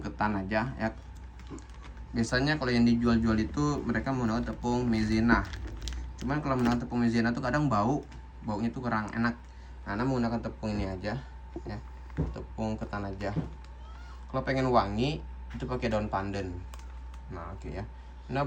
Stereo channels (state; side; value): identical; both; correlation 1.00